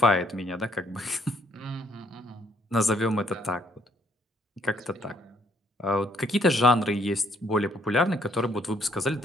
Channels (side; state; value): both; normal; correlation 0.68